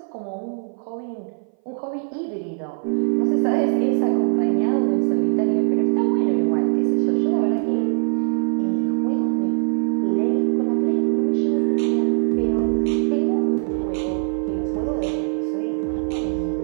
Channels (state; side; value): silent; left; 59 dB below the other